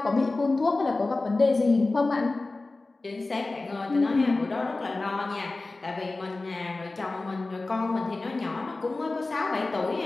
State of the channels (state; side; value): quieter; right; 3.3 dB